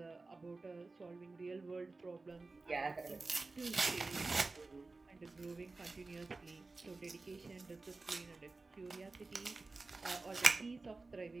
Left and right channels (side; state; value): left; quieter; 3.6 dB